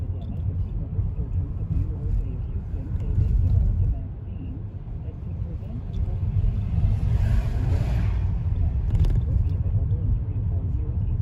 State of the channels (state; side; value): identical; both; correlation 1.00